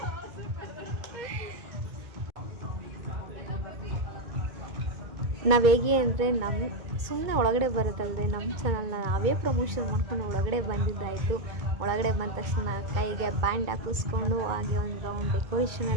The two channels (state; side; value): late; left; 2.2 ms